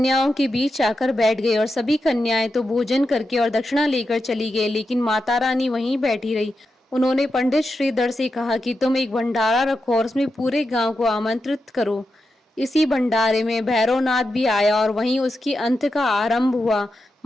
के बीच आकर बैठ गई और सभी कन्याएं तो भोजन करके और दक्षिणा लेकर चली गई, लेकिन माता रानी वहीं बैठी रही। उन्होंने पंडित श्रीधर से कहा कि तुम एक भंडारा रखो और उसमें पूरे गांव को आमंत्रित करो। इसी भंडारे में भैरवनाथ भी आया और वहीं उसकी अंत का आरंभ हुआ।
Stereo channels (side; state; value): both; normal; correlation 0.88